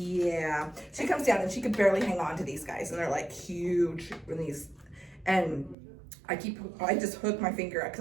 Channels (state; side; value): drops out; left; at 5.8 s